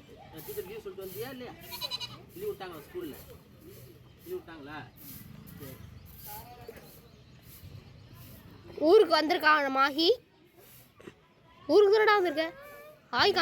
டீச்சர் லீவ் சொல்லிட்டு வந்தியா இல்லையா? லீவ் விட்டாங்களா ஸ்கூலில்? லீவ் விட்டாங்களா? சரி. ஊருக்கு வந்திருக்கான் மாஹி. ஊருக்கு தானடா வந்திருக்க? ஆய்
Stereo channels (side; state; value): both; identical; correlation 1.00